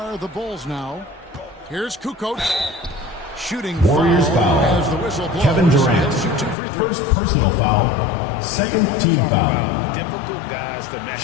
the Bulls now. Here's Kukoc. Shooting Warriors foul. as the whistle blows. Kevin Durant. He'll shoot 2 free throws. First personal foul. Second team foul. Difficult guys to match.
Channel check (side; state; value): right; drops out; at 6.6 s